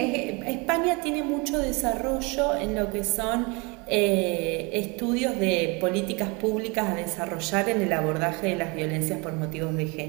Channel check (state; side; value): quieter; left; 28.7 dB